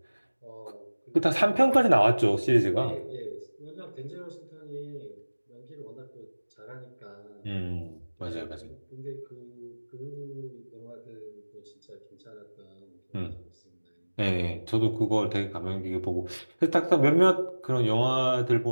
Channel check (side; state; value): both; inverted; correlation -1.00